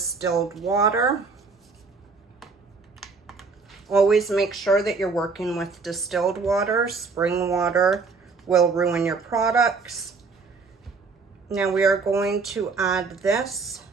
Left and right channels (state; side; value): quieter; left; 4.5 dB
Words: water. Always make sure that you're working with distilled water. Spring water will ruin your products. Now we are going to add this